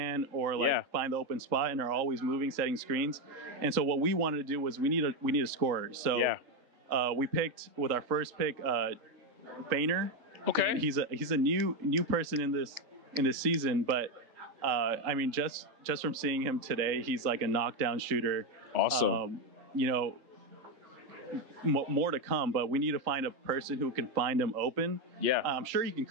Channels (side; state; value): left; late; 3.7 ms